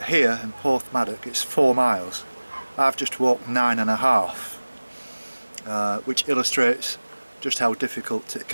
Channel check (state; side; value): inverted; both; correlation -1.00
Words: here in Porthmadog it's 4 miles. I've just walked 9.5, which illustrates just how difficult it